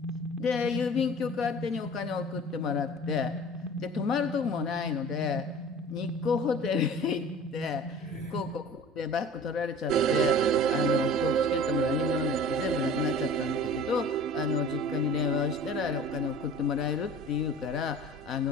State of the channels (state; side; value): normal; both; correlation 0.43